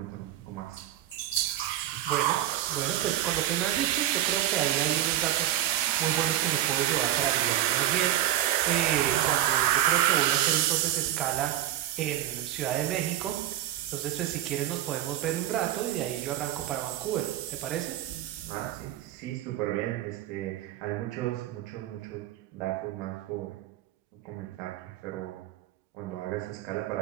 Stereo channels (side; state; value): left; quieter; 12.9 dB